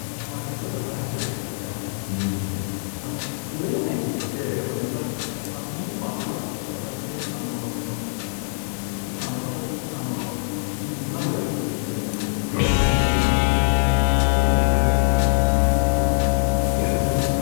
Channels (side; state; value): right; silent; digital silence